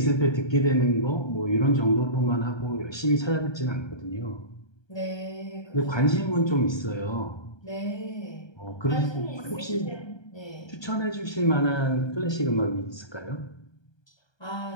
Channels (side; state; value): right; late; 1.3 ms